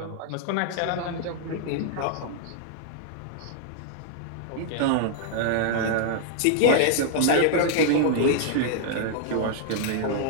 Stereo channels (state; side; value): different; both; correlation -0.01